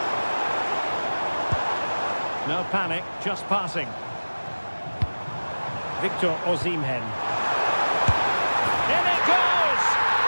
No panic, just passing. Victor Osimhen. In it goes!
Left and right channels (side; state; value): both; inverted; correlation -1.00